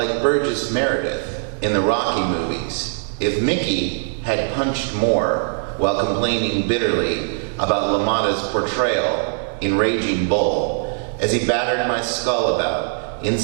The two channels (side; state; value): left; silent; digital silence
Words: Burgess Meredith in the Rocky movies. If Mickey had punched more while complaining bitterly about LaMotta's portrayal in Raging Bull as he battered my skull about